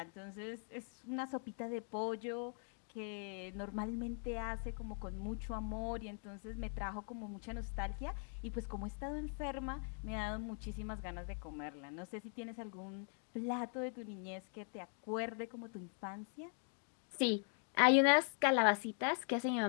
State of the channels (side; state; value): right; silent; 50 dB below the other